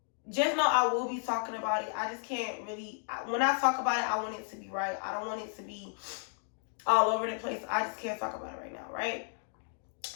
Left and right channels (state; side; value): silent; right; 56 dB below the other